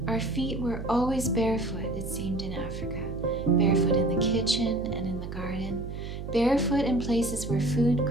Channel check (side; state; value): right; noise; hum, 8 dB below the sound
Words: Our feet were always barefoot, it seemed, in Africa. Barefoot in the kitchen and in the garden. Barefoot in places where food